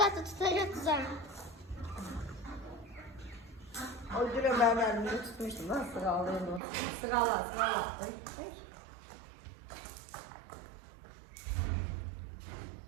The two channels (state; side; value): drops out; left; at 6.6 s